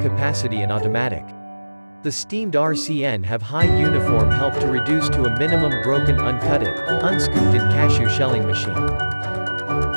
and automatic. The steamed RCN have high uniform help to reduce to a minimum broken uncutted, unscooped in cashew shelling machine.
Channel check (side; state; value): both; inverted; correlation -1.00